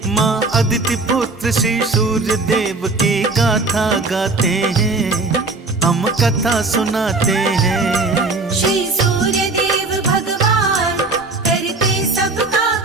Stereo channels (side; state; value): left; quieter; 3.5 dB